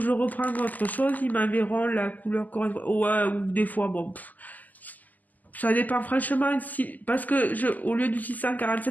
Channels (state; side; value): late; right; 0.081 ms